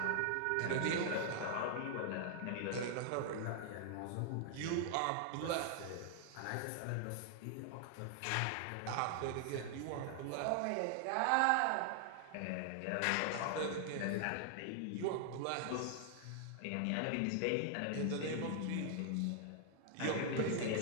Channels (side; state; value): both; different; correlation 0.00